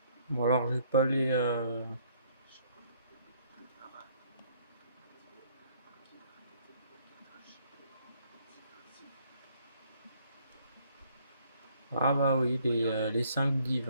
Bon alors je vais pas aller Ah bah oui, les 5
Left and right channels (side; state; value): both; inverted; correlation -0.64